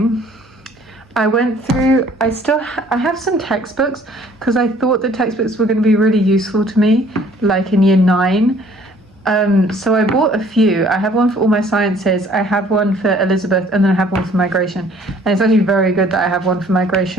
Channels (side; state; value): both; normal; correlation 0.56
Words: I went through, I have some textbooks because I thought the textbooks were going to be really useful to me, like in year 9. So I bought a few. I have one for all my sciences, I have one for Elizabeth, and then I have one for migration. And it's actually very good that I have one for